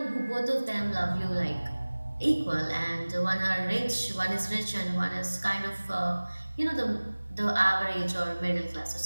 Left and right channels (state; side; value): inverted; both; correlation -1.00